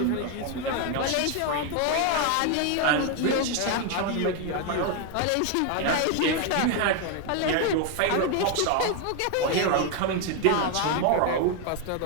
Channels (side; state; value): both; different; correlation 0.01